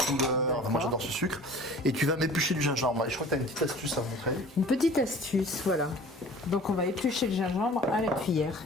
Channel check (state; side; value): normal; both; correlation 0.45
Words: Moi j'adore ce sucre. Et tu vas m'éplucher du gingembre. Et je crois que tu as une petite astuce à montrer. Une petite astuce, voilà. Donc on va éplucher le gingembre à la cuillère.